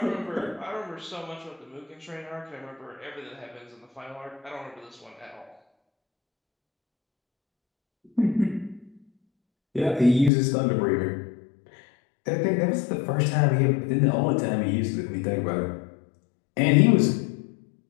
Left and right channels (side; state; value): right; drops out; at 10.3 s